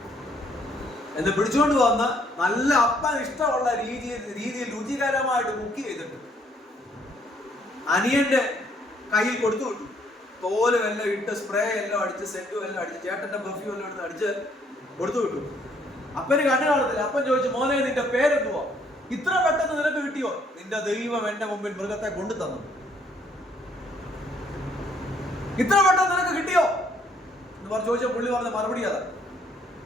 എന്ന് പിടിച്ചോണ്ട് വന്ന് നല്ല അപ്പൻ ഇഷ്ടമുള്ള രീതിയിൽ രുചികരമായിട്ട് കുക്ക് ചെയ്തിട്ട് അനിയന്റെ കയ്യിൽ കൊടുത്തു വിട്ടു. തോലും എല്ലാം ഇട്ട് സ്പ്രേ എല്ലാം അടിച്ച് സെന്റും എല്ലാം അടിച്ച് ചേട്ടന്റെ പെർഫ്യൂം എല്ലാം എടുത്ത് അടിച്ച് കൊടുത്തു വിട്ടു. അപ്പന് കണ്ണു കാണത്തില്ല. അപ്പൻ ചോദിച്ചു, മോനെ നിന്റെ പേരെന്തുവാ? ഇത്ര പെട്ടെന്ന് നിനക്ക് കിട്ടിയോ? നിന്റെ ദൈവം എന്റെ മുമ്പിൽ മൃഗത്തെ കൊണ്ടു തന്നു. ഇത്ര പെട്ടെന്ന് നിനക്ക് കിട്ടിയോ എന്ന് പറഞ്ഞു ചോദിച്ച പുള്ളി പറഞ്ഞ മറുപടി അതാ.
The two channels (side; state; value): both; normal; correlation 0.66